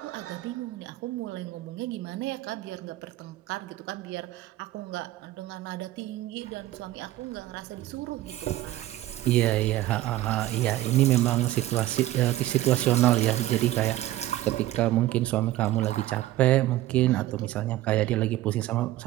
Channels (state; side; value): quieter; left; 15.3 dB